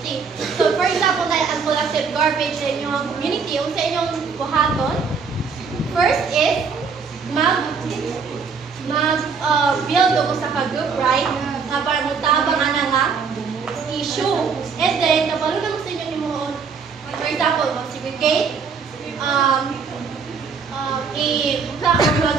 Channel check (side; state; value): left; quieter; 5.5 dB